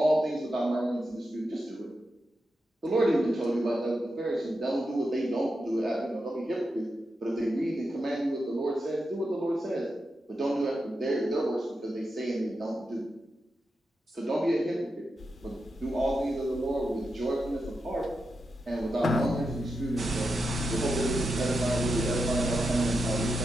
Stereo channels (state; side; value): normal; both; correlation 0.88